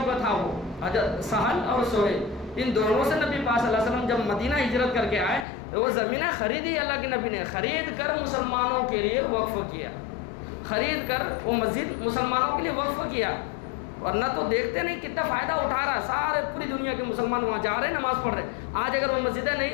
کا تھا وہ، حضرت سہل اور سہیل، ان دونوں سے نبی پاک صلی اللہ علیہ وسلم جب مدینہ ہجرت کر کے آئے تو وہ زمینیں خریدی، اللہ کے نبی نے خرید کر مسلمانوں کے لیے وقف کیا، خرید کر وہ مسجد مسلمانوں کے لیے وقف کیا۔ ورنہ تو دیکھتے نہیں کتنا فائدہ اٹھا رہا ہے، سارے پوری دنیا کے مسلمان وہاں جا رہے نماز پڑھ رہے۔ آج اگر وہ مسجدیں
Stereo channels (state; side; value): drops out; right; at 5.5 s